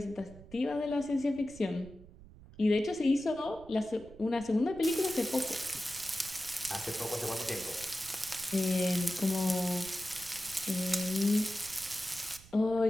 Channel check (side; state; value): right; noise; rumble, 20 dB below the sound